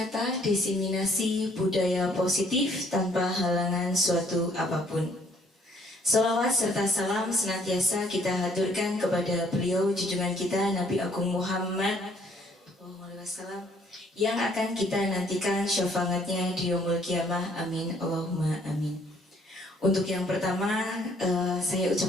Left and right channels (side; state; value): both; normal; correlation 0.63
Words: desiminasi budaya positif tanpa halangan suatu apapun. Salawat serta salam senantiasa kita haturkan kepada beliau junjungan kita Nabi Agung Muhammad SAW yang akan kita nantikan syafaatnya di yaumul kiamah. Amin Allahumma amin. Untuk yang pertama, saya